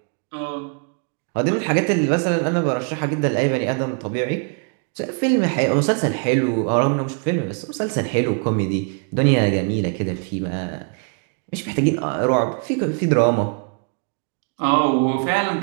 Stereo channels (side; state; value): left; quieter; 39.7 dB